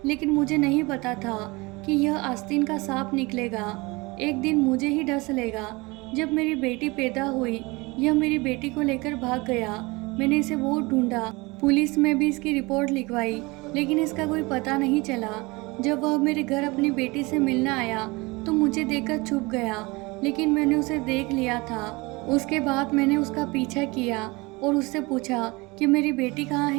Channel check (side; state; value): left; quieter; 24.5 dB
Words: लेकिन मुझे नहीं पता था कि यह आस्तीन का सांप निकलेगा, एक दिन मुझे ही डस लेगा। जब मेरी बेटी पैदा हुई, यह मेरी बेटी को लेकर भाग गया। मैंने इसे बहुत ढूंढा, पुलिस में भी इसकी रिपोर्ट लिखवाई, लेकिन इसका कोई पता नहीं चला। जब वह मेरे घर अपनी बेटी से मिलने आया तो मुझे देखकर छुप गया, लेकिन मैंने उसे देख लिया था। उसके बाद मैंने उसका पीछा किया और उससे पूछा कि मेरी बेटी कहाँ